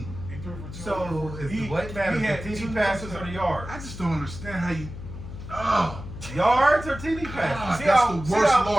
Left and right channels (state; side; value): noise; left; hum, 11 dB below the sound